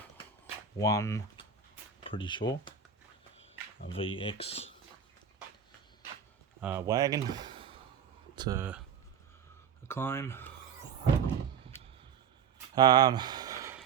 pretty sure. A VX wagon. It's a claim.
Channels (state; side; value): quieter; left; 7.3 dB